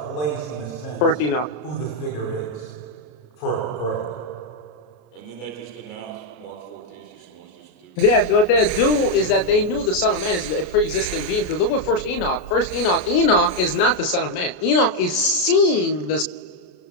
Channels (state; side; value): late; right; 33 ms